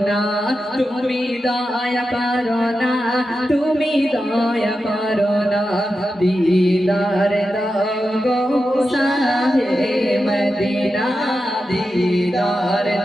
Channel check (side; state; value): both; normal; correlation 0.90